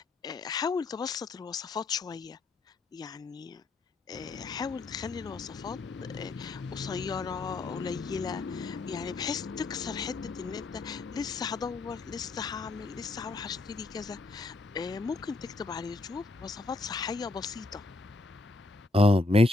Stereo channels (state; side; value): quieter; right; 3.1 dB